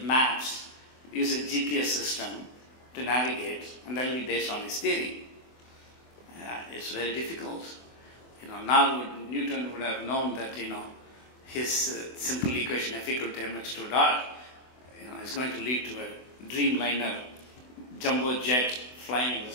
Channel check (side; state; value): right; late; 24 ms